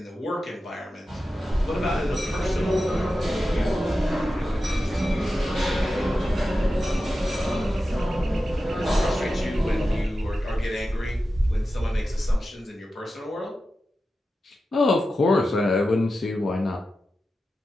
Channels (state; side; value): normal; both; correlation 0.92